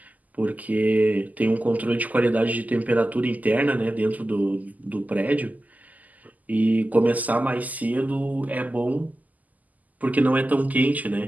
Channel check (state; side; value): late; left; 0.079 ms